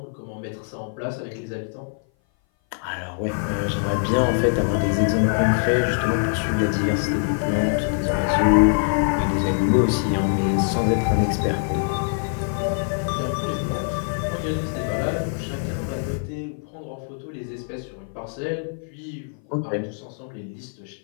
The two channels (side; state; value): right; silent; 58 dB below the other